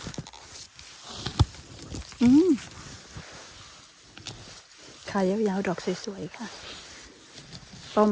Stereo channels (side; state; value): both; identical; correlation 1.00